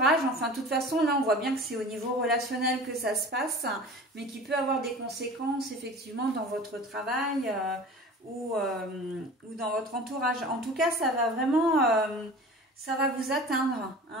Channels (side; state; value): both; normal; correlation 0.39